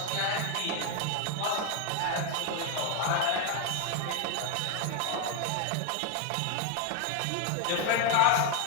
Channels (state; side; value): different; both; correlation 0.01